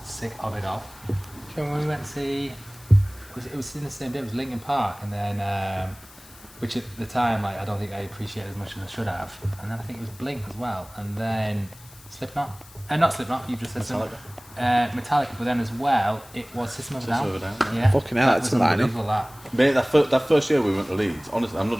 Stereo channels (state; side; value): noise; left; hiss, 22 dB below the sound